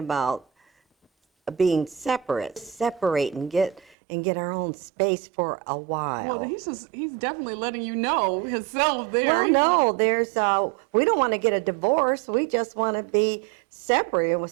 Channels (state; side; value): drops out; left; at 4.0 s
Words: being separate and get our own space for a while. Well, he's definitely letting you know himself there. Well, no, there's we don't want to get a divorce. We just want to be separate with